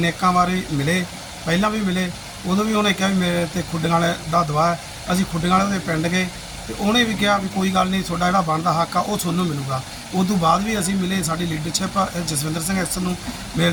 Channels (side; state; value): both; identical; correlation 1.00